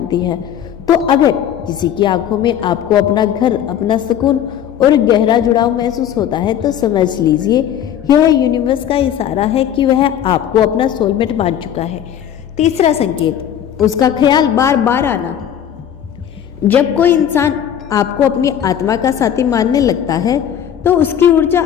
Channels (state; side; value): quieter; right; 9.9 dB